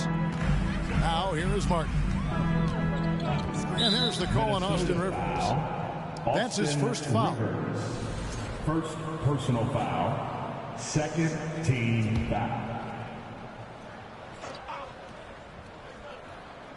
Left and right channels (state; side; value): identical; both; correlation 1.00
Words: Now here is Martin. And there's the call on Austin Rivers. That's his first foul. First personal foul. Second team foul.